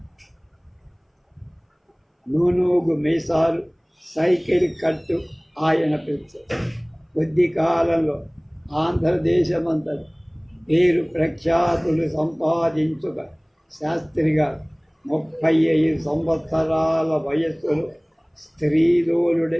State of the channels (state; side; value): identical; both; correlation 1.00